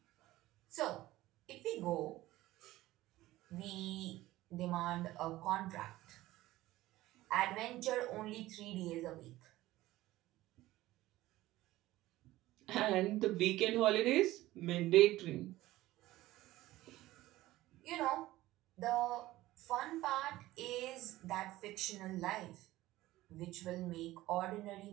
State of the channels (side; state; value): left; quieter; 16.7 dB